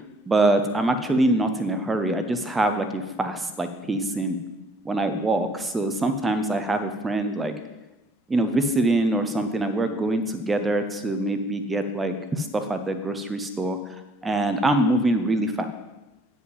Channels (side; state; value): both; normal; correlation 0.62